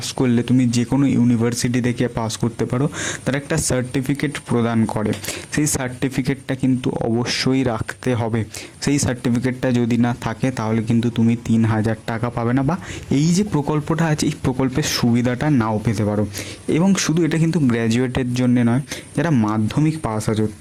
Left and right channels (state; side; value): identical; both; correlation 1.00